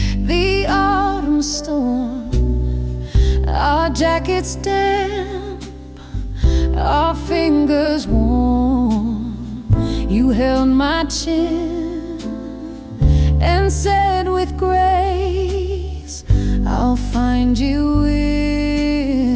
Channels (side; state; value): both; identical; correlation 1.00